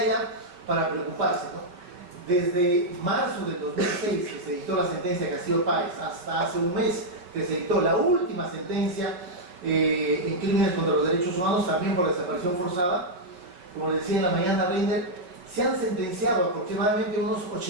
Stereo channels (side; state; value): left; late; 5.3 ms